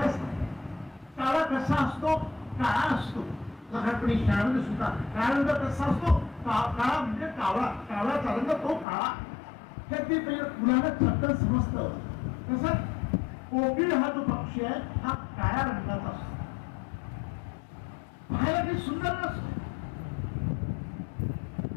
काळा कसा असतो, काळा असतो. लहानपणी शाळेमध्ये सुद्धा काळा रंग कसा असतो, काळा म्हणजे कावळा, कावळ्याचा रंग तो काळा. तर ते मुलांना चटकन समजतं. तसंच कोकिळ हा जो पक्षी आहे हा काळ्या रंगाचा असतो, पाहायला काही सुंदर नसतो.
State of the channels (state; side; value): drops out; right; at 8.8 s